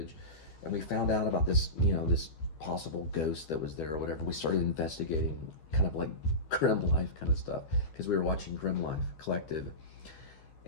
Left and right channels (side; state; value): right; late; 13 ms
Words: And we found out about this, this possible ghost that was there or whatever. We started investigating kind of like Grim Life kind of stuff, because we were watching Grim Life Collective.